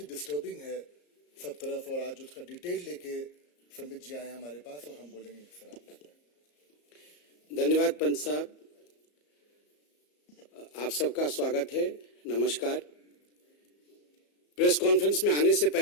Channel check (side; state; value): right; late; 34 ms